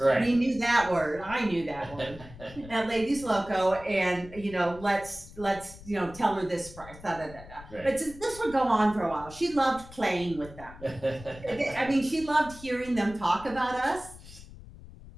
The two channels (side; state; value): left; noise; rumble, 17 dB below the sound